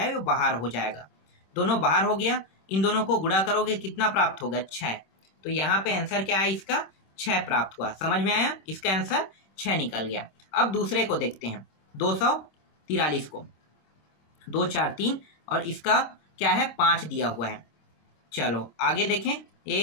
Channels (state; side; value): late; right; 26 ms